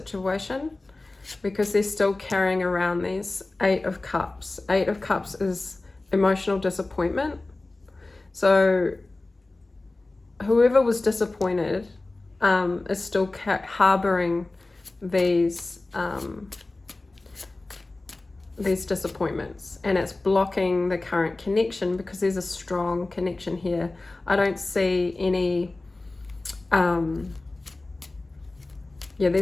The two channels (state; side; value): quieter; right; 3.1 dB